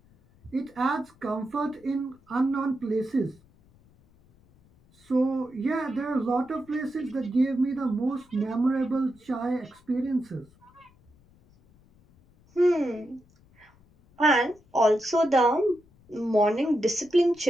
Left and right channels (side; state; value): left; noise; rumble, 30 dB below the sound